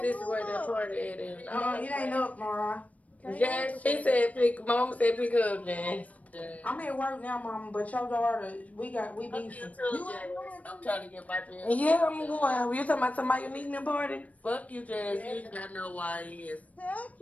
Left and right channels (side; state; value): right; late; 0.069 ms